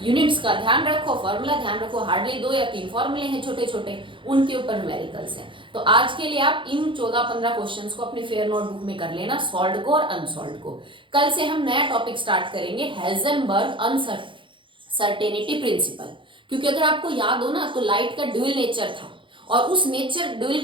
यूनिट्स का ध्यान रखो, फॉर्मूला ध्यान रखो, हार्डली 2 या 3 फॉर्मूले हैं छोटे छोटे, उनके ऊपर न्यूमेरिकल्स हैं। तो आज के लिए आप इन 14-15 क्वेश्चंस को अपनी फेयर नोटबुक में कर लेना, सॉल्व को और अनसॉल्व को। कल से हम नया टॉपिक स्टार्ट करेंगे, हेजनबर्ग अनसर्टेनिटी प्रिंसिपल। क्योंकि अगर आपको याद हो ना, तो लाइट का ड्यूल नेचर था, और उस नेचर ड्यूल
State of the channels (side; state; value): left; late; 0.24 ms